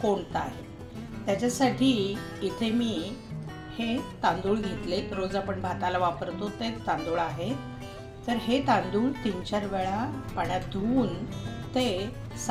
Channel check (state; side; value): identical; both; correlation 1.00